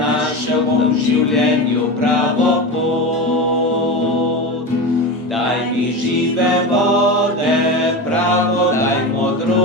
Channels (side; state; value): both; normal; correlation 0.23